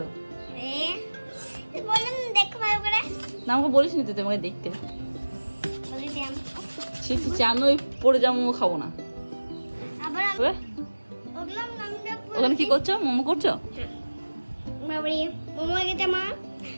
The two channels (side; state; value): both; inverted; correlation -1.00